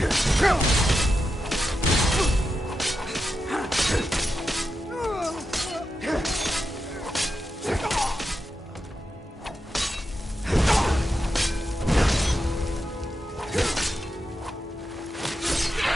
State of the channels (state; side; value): normal; both; correlation 0.88